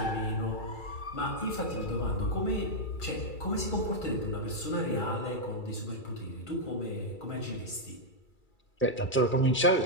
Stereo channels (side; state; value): right; late; 2.3 ms